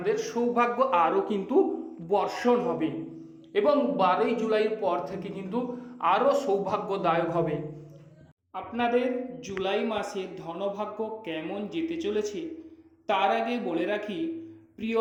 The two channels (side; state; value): both; identical; correlation 1.00